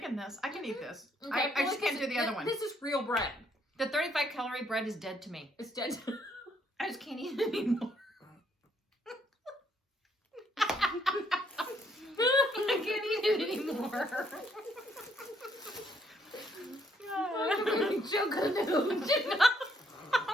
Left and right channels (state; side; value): normal; both; correlation 0.70